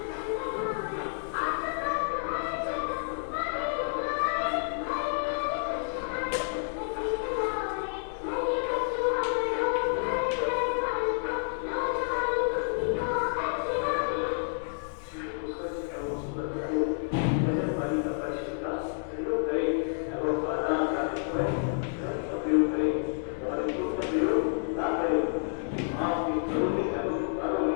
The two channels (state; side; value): silent; right; digital silence